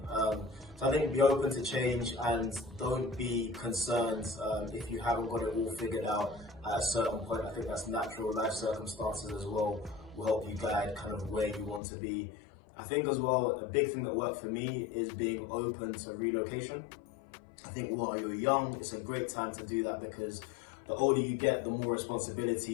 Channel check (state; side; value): drops out; right; at 11.8 s